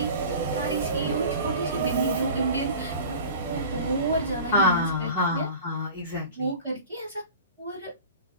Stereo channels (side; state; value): both; inverted; correlation -0.38